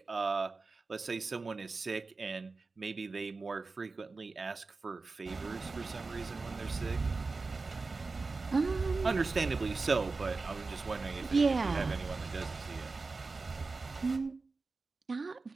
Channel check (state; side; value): quieter; left; 3.9 dB